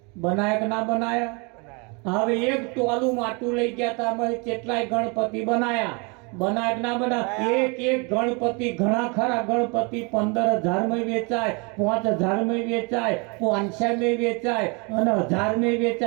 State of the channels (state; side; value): quieter; left; 31.2 dB